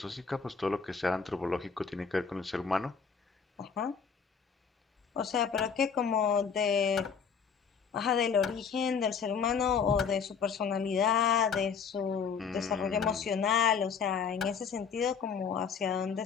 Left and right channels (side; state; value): right; quieter; 6.4 dB